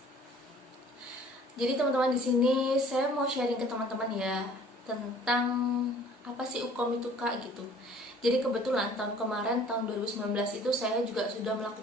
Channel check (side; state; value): both; normal; correlation 0.52